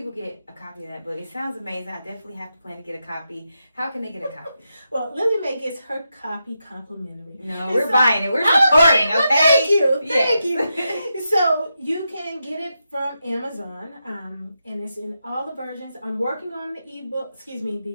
get a copy of that book? It sounds amazing. I definitely have to plan to get a copy. How can they get a copy? Well, Lillie Mae gets her copy complimentary. No, we're buying it. We're supporting, well, okay? Thank you. So you can get it from Amazon, and it's in all the versions. I'm working on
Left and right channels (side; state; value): both; inverted; correlation -0.87